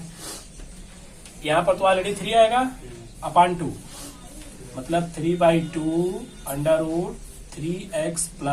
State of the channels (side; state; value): both; identical; correlation 1.00